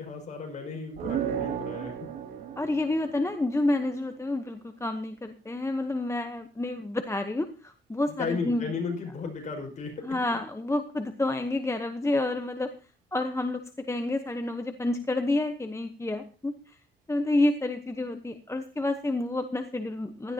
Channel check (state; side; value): normal; both; correlation 0.80